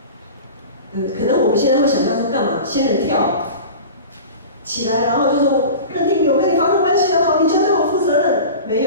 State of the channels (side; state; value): both; inverted; correlation -0.34